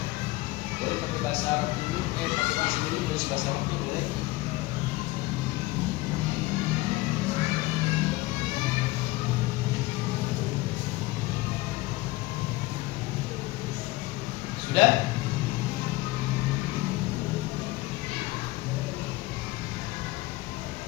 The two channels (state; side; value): quieter; right; 19.7 dB